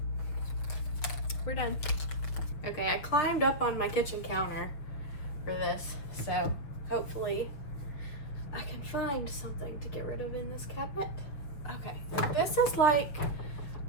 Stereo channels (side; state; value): right; late; 6.9 ms